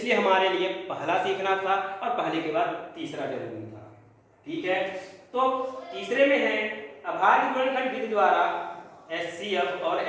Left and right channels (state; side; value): identical; both; correlation 1.00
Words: हमारे लिए पहला सीखना था और पहले के बाद तीसरा जरूरी था, ठीक है। तो तीसरे में है अभाज्य गुणनखंड विधि द्वारा HCF और